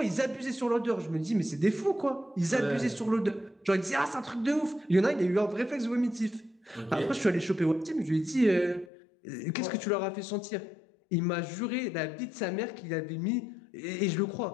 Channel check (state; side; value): drops out; right; at 8.9 s